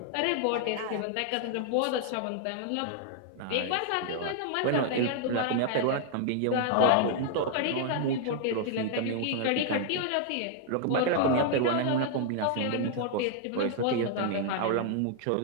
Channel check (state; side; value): different; both; correlation 0.00